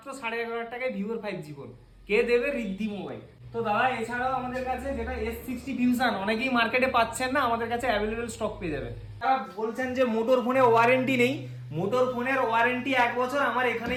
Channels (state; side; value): identical; both; correlation 1.00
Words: 11,500 টাকায় ভিভোর 5G ফোন। কে দেবে? রিদ্ধি মোবাইল। তো দাদা এছাড়াও আমাদের কাছে যেটা S60 ফিউশন অনেকেই মার্কেটে পাচ্ছেন না, আমাদের কাছে অ্যাভেলেবেল স্টক পেয়ে যাবেন। তারা বলছেন যে মোটর ফোনে ওয়ারেন্টি নেই, মোটর ফোনের ওয়ারেন্টি 1 বছর আমার